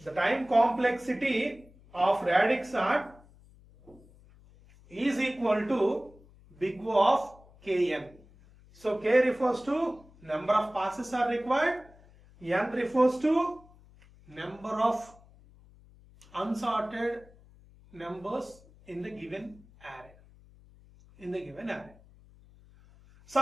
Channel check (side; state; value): left; noise; hum, 25 dB below the sound